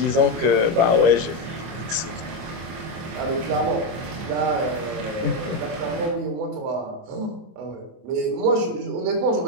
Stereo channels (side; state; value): left; late; 24 ms